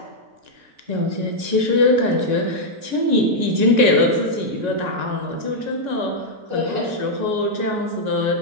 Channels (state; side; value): late; left; 6.9 ms